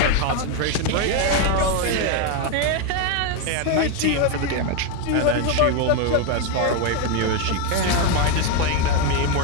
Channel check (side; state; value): both; different; correlation 0.02